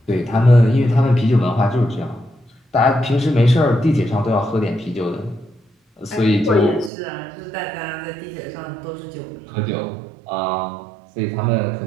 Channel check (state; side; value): drops out; left; at 6.9 s